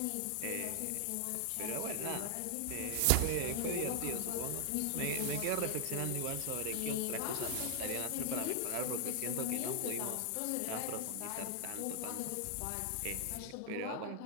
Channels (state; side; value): different; both; correlation 0.00